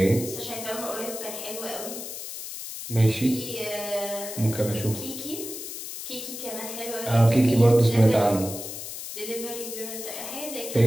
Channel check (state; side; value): noise; left; hiss, 8 dB below the sound